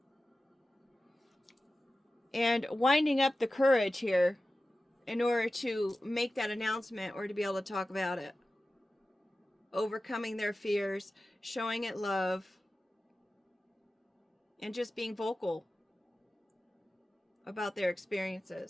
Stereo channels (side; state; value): both; normal; correlation 0.94